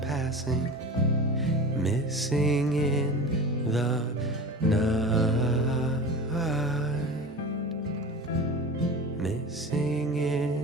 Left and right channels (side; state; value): both; normal; correlation 0.33